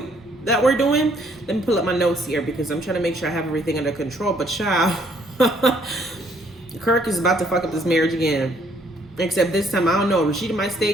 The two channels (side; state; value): both; normal; correlation 0.66